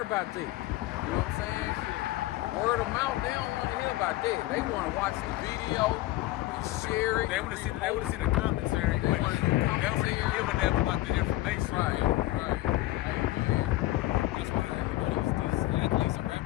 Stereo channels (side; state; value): right; quieter; 17.1 dB